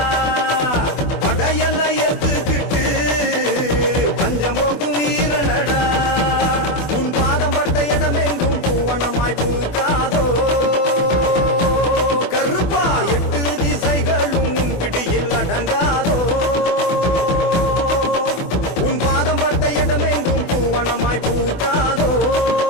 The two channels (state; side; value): late; right; 24 ms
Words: படையல ஏத்துக்கிட்டு பஞ்சம் போக்கும் வீரனடா. உன் பாதம் பட்ட இடமெங்கும் பூவனமாய் பூக்காதோ கருப்பா. எட்டு திசைகளும் உன் பிடியில் அடங்காதோ. உன் பாதம் பட்ட இடமெங்கும் பூவனமாய் பூக்காதோ